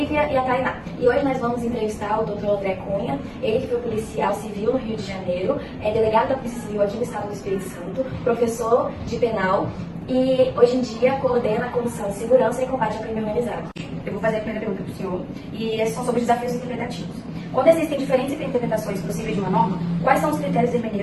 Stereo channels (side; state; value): both; identical; correlation 1.00